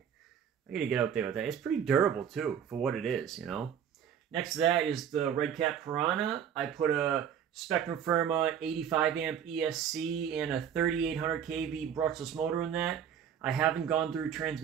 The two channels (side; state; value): left; quieter; 8.6 dB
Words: I gotta get out there with that. It's pretty durable, too, for what it is, you know? Next to that is the Red Cat Piranha. I put a Spectrum Firma 85 amp ESC and a 3800 kV brushless motor in that. I haven't gone through